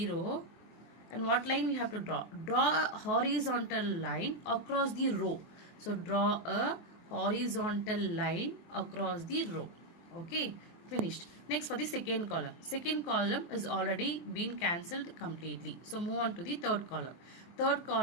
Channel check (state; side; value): late; right; 23 ms